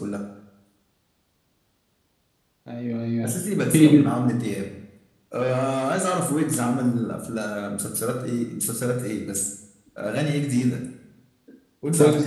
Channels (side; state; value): both; identical; correlation 1.00